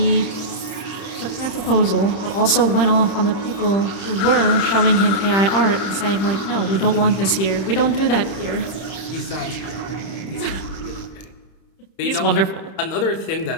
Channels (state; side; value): late; right; 30 ms